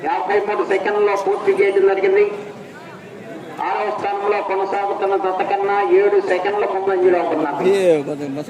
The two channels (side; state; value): both; identical; correlation 1.00